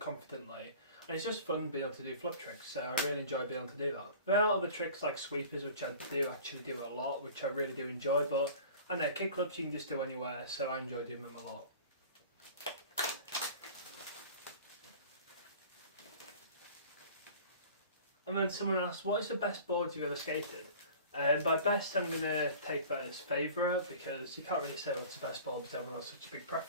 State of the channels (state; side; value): inverted; both; correlation -0.42